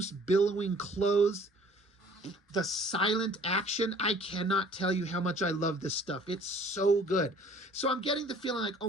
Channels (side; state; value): both; normal; correlation 0.53